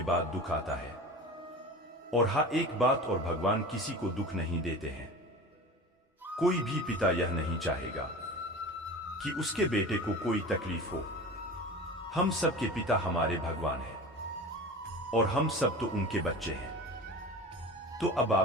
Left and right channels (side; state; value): both; normal; correlation 0.34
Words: बाद दुख आता है। और हाँ, एक बात और, भगवान किसी को दुख नहीं देते हैं। कोई भी पिता यह नहीं चाहेगा कि उसके बेटे को कोई तकलीफ हो। हम सब के पिता हमारे भगवान हैं और हम सब तो उनके बच्चे हैं। तो अब